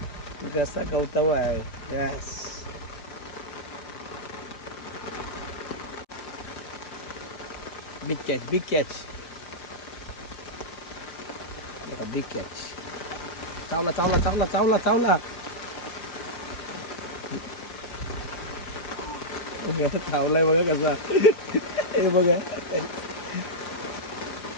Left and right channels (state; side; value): late; right; 5.0 ms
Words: कसा गवताव आहे. Yes, big catch, big catch. बघा बिग कॅच. चावला चावला चावला चावला चावला. चावलाय बघा कसा. हे बघा